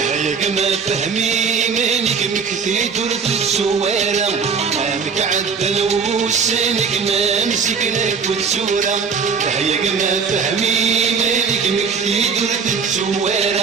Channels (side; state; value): left; quieter; 5.7 dB